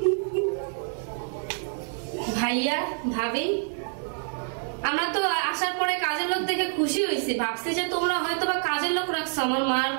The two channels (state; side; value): silent; left; 60 dB below the other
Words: ভাইয়া ভাবি আমরা তো আসার পরে কাজের লোক দেখে খুশি হয়েছি, ভাবছি যে তোমরা হয়তো বা কাজের লোক রাখছো, আমার মার